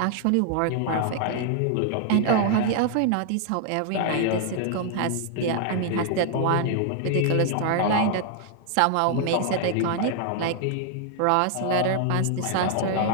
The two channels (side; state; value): both; different; correlation 0.00